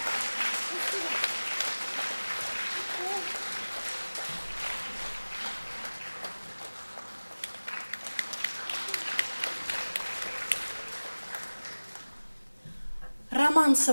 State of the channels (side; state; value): both; inverted; correlation -1.00